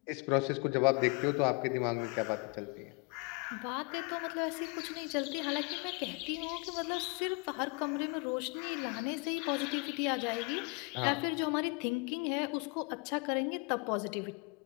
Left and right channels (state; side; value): quieter; right; 30.9 dB